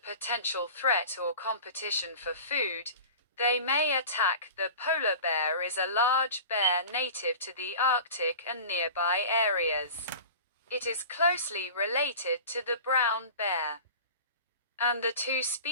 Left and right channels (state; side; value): inverted; both; correlation -0.37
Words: threat or competition for food, they may attack. The polar bear is a large bear native to the Arctic and nearby areas. It is closely related to the brown bear, and the two